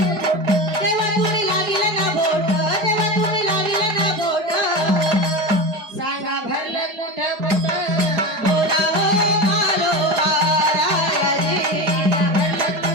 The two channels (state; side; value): late; left; 4.8 ms